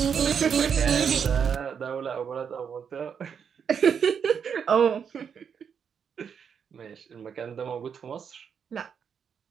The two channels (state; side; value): quieter; left; 7.1 dB